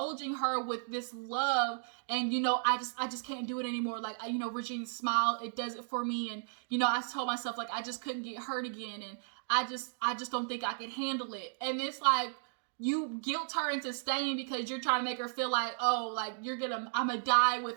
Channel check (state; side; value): silent; left; digital silence